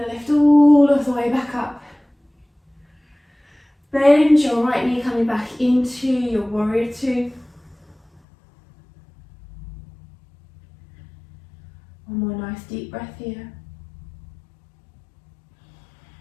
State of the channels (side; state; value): right; drops out; at 8.2 s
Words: to lift all of the way back up. Bend your right knee coming back into your warrior two. One more nice deep breath here.